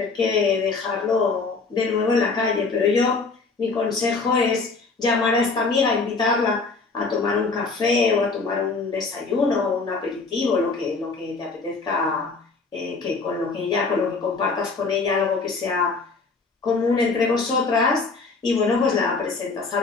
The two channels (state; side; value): quieter; right; 4.2 dB